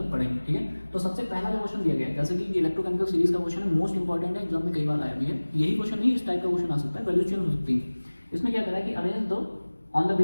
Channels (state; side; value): inverted; both; correlation -1.00